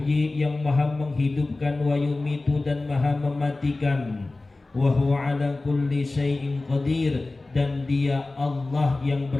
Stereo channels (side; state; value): right; quieter; 3.2 dB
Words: yang maha menghidupkan, wa yumitu, dan maha mematikan, wa huwa ala kulli syai'in qadir, dan dia Allah yang